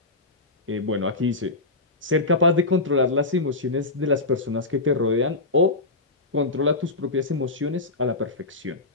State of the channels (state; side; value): quieter; right; 3.1 dB